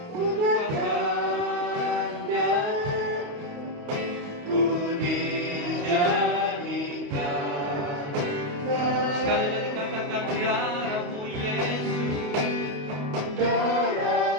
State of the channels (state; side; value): late; left; 28 ms